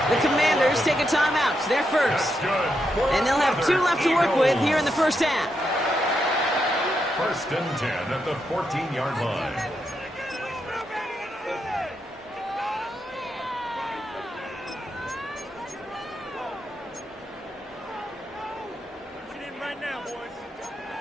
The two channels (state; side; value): normal; both; correlation 0.83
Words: The Commanders take a timeout. They're first. And they'll have 2 left to work with here in the first half. 1st and 10 at the 14-yard line.